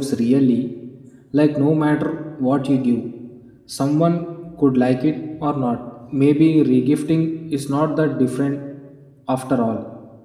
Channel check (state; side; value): identical; both; correlation 1.00